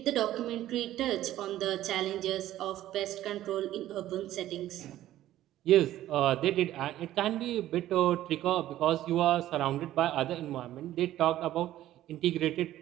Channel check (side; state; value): left; quieter; 13.7 dB